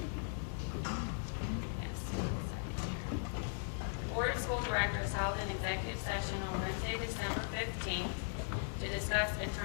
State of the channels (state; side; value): silent; right; digital silence